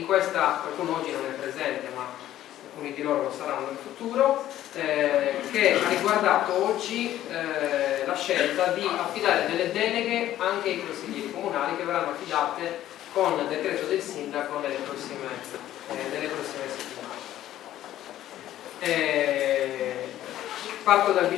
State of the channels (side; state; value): right; quieter; 12.9 dB